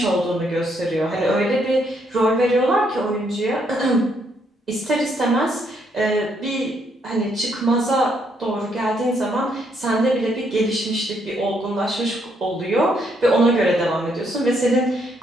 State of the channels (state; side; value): normal; both; correlation 0.73